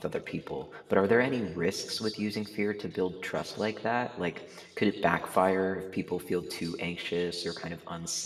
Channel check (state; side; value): identical; both; correlation 1.00